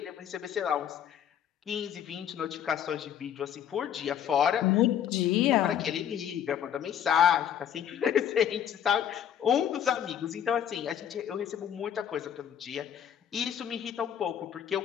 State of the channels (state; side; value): quieter; right; 9.5 dB